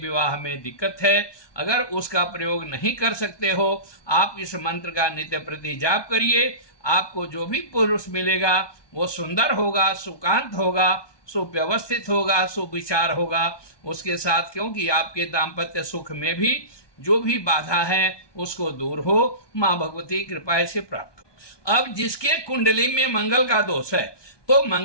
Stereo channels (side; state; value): right; late; 1.2 ms